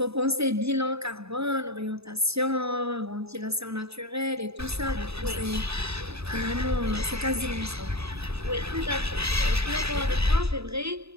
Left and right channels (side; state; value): left; late; 0.79 ms